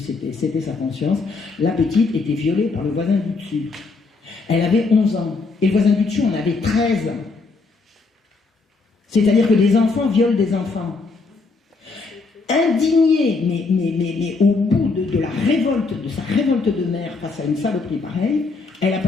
sa conscience. La petite était violée par le voisin du dessus. Elle avait 11 ans. Et le voisin du dessus en avait 13 ans. C'est-à-dire que les enfants violent des enfants. Indignée, mais au bout de sa révolte de mère face à une saloperie pareille, elle a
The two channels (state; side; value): quieter; right; 4.0 dB